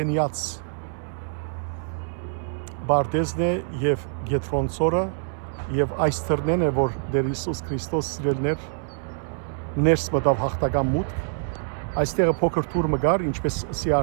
Բարդեզն է եւ Գետրոնցորը եւ այս թռնեն է, որ դեր Հիսուս Քրիստոս սիրելիներ ներս մտավ հաղթական մուտք։ Այստեղը փոքր թուր մգար, ինչպես ասի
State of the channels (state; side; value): silent; left; 60 dB below the other